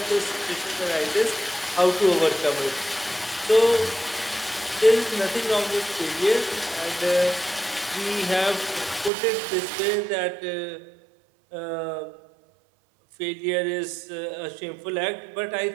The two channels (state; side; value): drops out; left; at 9.1 s